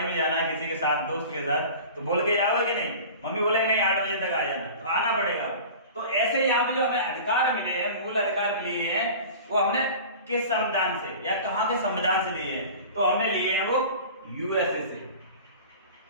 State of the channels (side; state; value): both; inverted; correlation -0.38